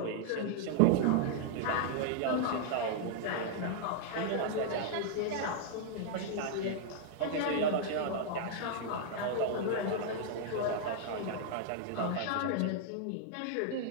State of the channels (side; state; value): both; different; correlation -0.01